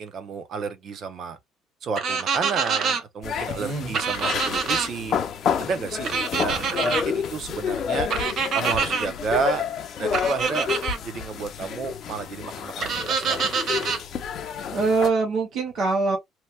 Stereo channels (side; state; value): both; normal; correlation 0.62